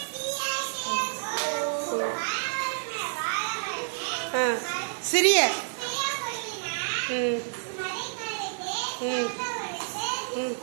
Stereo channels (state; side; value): silent; left; digital silence